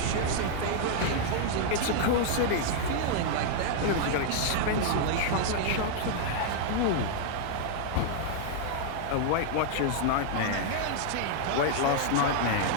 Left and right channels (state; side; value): different; both; correlation -0.01